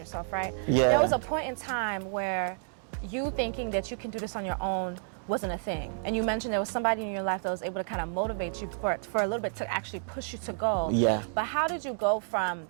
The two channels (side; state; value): left; silent; digital silence